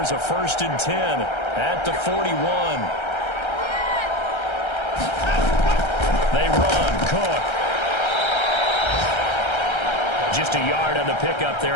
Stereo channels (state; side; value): late; right; 1.3 ms